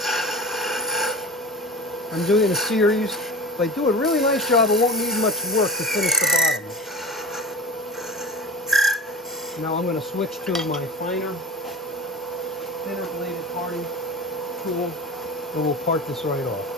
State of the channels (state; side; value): normal; both; correlation 0.33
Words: I'm doing it in a series. If I do a really nice job, it won't need much work to finish the bottom. Now I'm going to switch to my thinner bladed parting tool, and we'll part this right